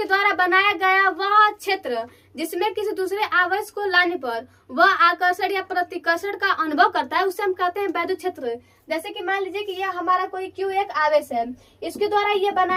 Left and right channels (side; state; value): both; identical; correlation 1.00